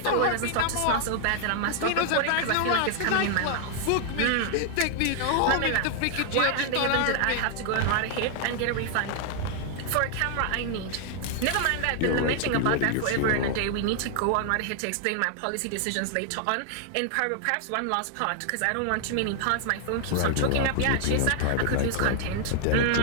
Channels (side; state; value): both; different; correlation 0.00